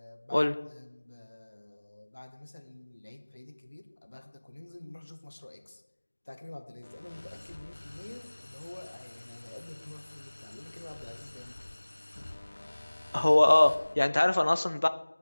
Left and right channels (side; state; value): both; inverted; correlation -1.00